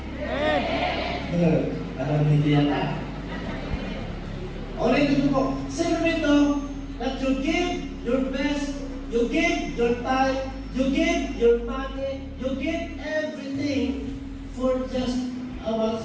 Parang hindi yata. Ulit ito po. Sino dito that you give your best, you give your time You give your money, you give everything for just our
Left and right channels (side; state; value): both; identical; correlation 1.00